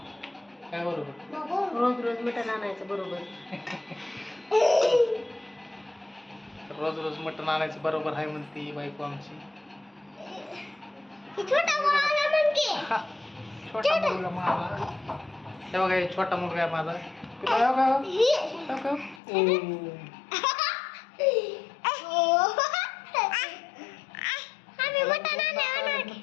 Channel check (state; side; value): drops out; right; at 19.2 s